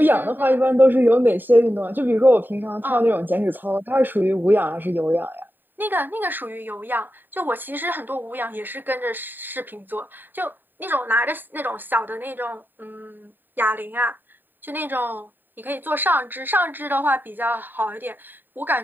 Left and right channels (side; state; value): left; late; 0.092 ms